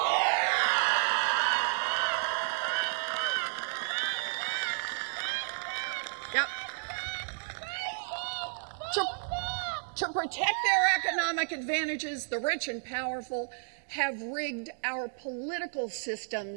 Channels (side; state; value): left; silent; digital silence